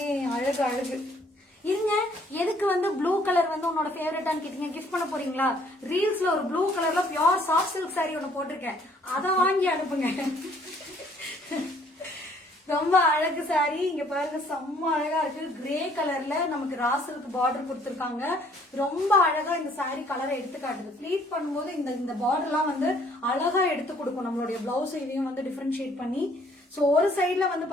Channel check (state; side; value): normal; both; correlation 0.61